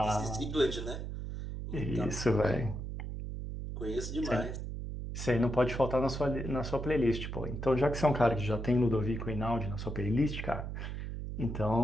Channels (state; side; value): noise; right; hum, 6 dB below the sound